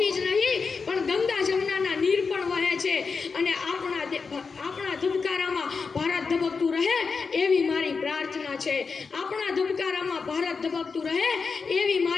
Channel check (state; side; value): quieter; right; 4.9 dB